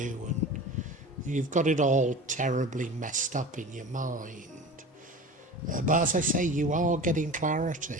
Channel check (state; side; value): normal; both; correlation 0.34